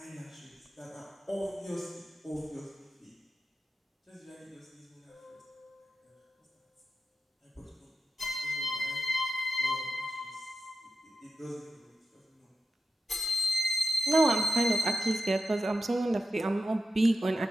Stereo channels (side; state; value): both; normal; correlation 0.91